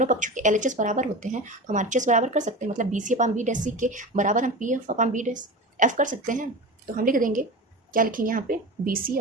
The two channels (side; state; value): both; normal; correlation 0.29